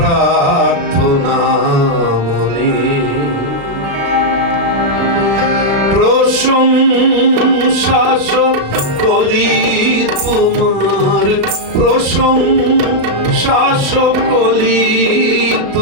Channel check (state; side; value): late; left; 36 ms